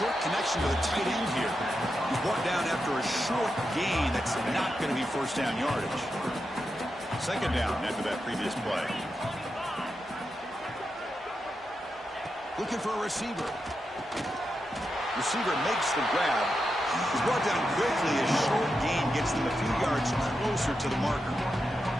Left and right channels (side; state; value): both; normal; correlation 0.87